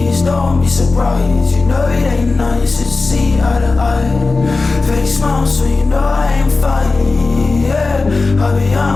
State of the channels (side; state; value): right; quieter; 3.7 dB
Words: don't be surprised. You know it ain't nice to see eye to eye. Fake smile, so you know I ain't fine. Yeah, carry